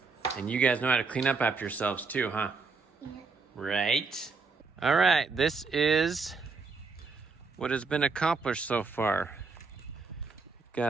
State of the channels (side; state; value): left; quieter; 4.3 dB